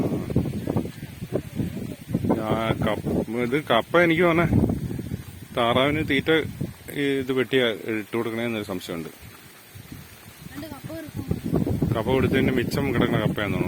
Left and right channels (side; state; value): both; identical; correlation 1.00